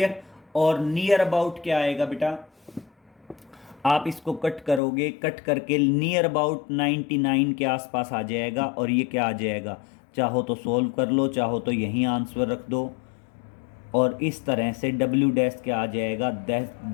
और नियर अबाउट क्या आएगा बेटा, आप इसको कट करोगे, कट करके नियर अबाउट 99 के आसपास आ जाएगा, और ये क्या आ जाएगा, चाहो तो सोल्व कर लो, चाहो तो यहीं आंसर रख दो, और इस तरह से W डैश क्या आ जाएगा,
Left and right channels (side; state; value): right; drops out; at 4.8 s